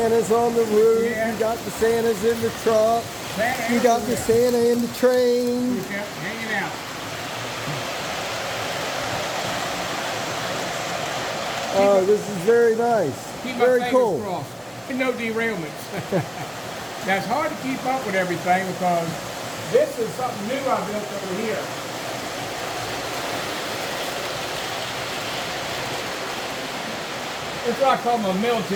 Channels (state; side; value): identical; both; correlation 1.00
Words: on the roof. Yeah. You got the Santas in the truck. Santa You got the everywhere. Santa in the train. He kept hanging out. Oh, this is very nice. Keep my Very fingers cool. crossed. No derailments. Now it's hard to keep up with everything because this is something new I built over here. It's what I call my